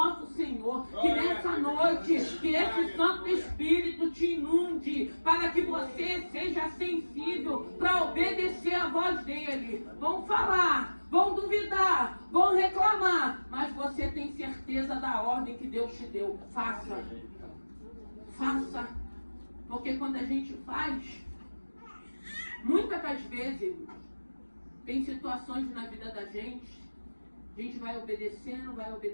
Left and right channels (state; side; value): inverted; both; correlation -1.00